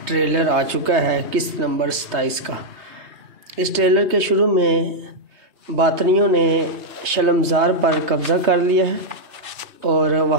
ٹریلر آ چکا ہے قسط نمبر 27 کا۔ اس ٹریلر کے شروع میں باطنیوں نے شلمزار پر قبضہ کر لیا ہے اور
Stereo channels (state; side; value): late; left; 3.2 ms